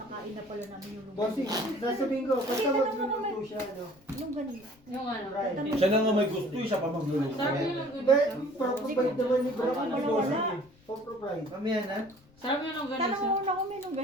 na pala namin yung Bossing, longganisa. sasabihin ko, basta Kasi tanong mo magluluto naman. siya, ano. Longganisa. Yung ano. Right. Siya na nga may gusto, siya pa magluluto. Sarap yung longganisa. But, proprovide naman ni Bro. Wala, Ni wala. Bossing eh. Proprovide. Mamaya na. Sarap yung Tanong longganisa. mo na kung may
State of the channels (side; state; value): left; noise; rumble, 28 dB below the sound